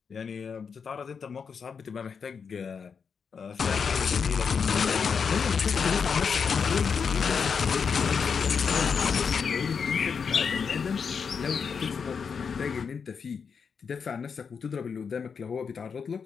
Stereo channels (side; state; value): right; quieter; 6.1 dB